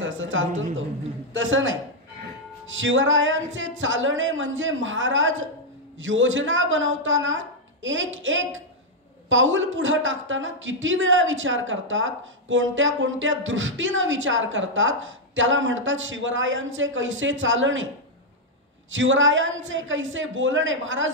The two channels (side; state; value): both; normal; correlation -0.02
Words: चालतो तो, तसं नाही. शिवरायांचे चालणे म्हणजे महाराज योजना बनवताना एक पाऊल पुढे टाकताना किती वेळा विचार करतात, कोणत्या कोणत्या दृष्टीनं विचार करतात, त्याला म्हणतात शिवरायांचे कैसे चालणे. शिवरायांचे कैसे बोलणे,